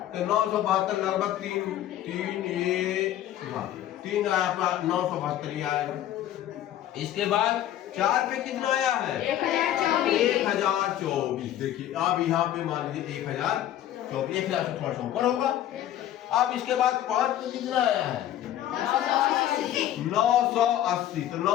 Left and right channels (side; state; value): right; quieter; 12.2 dB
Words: तो 972 लगभग 3 आया, 972 ही आएगा। इसके बाद 4 पे कितना आया है 1024। देखिए अब यहाँ पे मान लीजिए 1024, 1000 से थोड़ा सा ऊपर होगा। अब इसके बाद 5 पे कितना आया है 980। तो